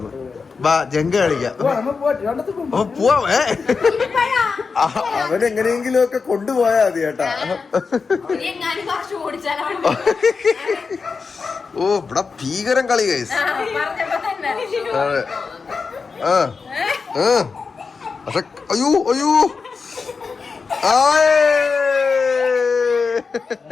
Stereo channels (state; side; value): quieter; right; 4.9 dB